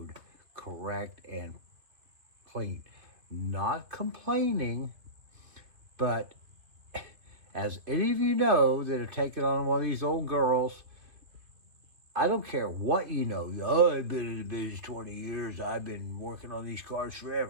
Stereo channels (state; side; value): late; left; 2.5 ms